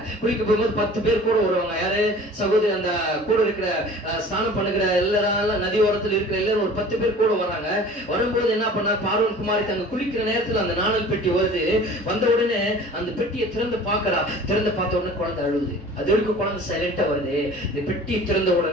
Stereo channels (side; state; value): both; normal; correlation 0.44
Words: குளிக்க போகும்போது 10 பேர் கூட வருவாங்க. யாரு? சகோதரி, அந்த கூட இருக்கிற ஸ்நானம் பண்ணுகிற எல்லாரும் நதி ஓரத்தில் இருக்கிற எல்லாரும் ஒரு 10 பேர் கூட வராங்க. வரும்போது என்ன பண்ணா, பார்வன் குமாரி அங்க குளிக்கிற நேரத்துல அந்த நாணல் பெட்டி வருது. வந்த உடனே அந்த பெட்டியை திறந்து பாக்குறா. திறந்து பார்த்த உடனே குழந்தை அழுகுது. அது வரைக்கும் குழந்தை சைலண்டா வருது. இந்த பெட்டியை திறந்த